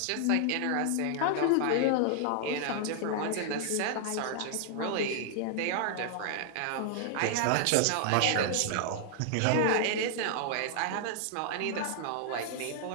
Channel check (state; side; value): different; both; correlation 0.00